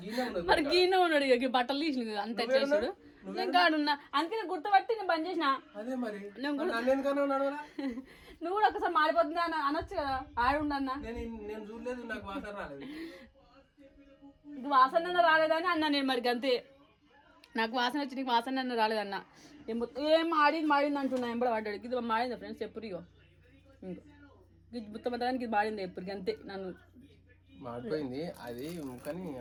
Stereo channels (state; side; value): identical; both; correlation 1.00